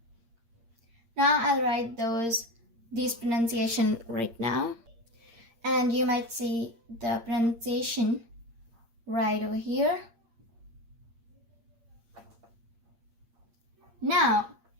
Now I'll write these pronunciation right now, and you might see the pronunciation right over here. Now,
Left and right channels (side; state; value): left; late; 8.6 ms